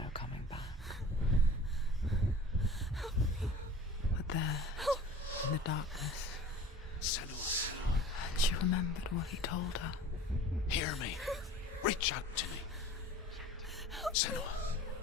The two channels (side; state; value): both; normal; correlation 0.43